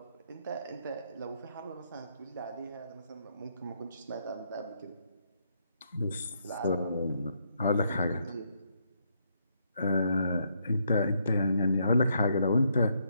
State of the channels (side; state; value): both; inverted; correlation -0.75